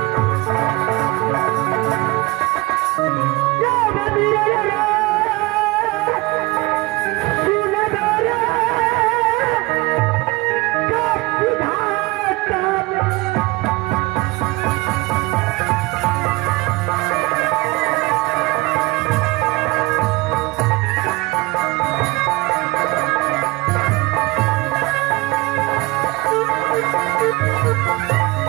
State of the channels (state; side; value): quieter; left; 23.1 dB